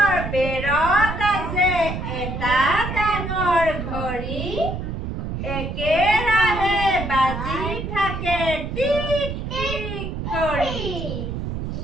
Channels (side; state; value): right; noise; rumble, 5 dB below the sound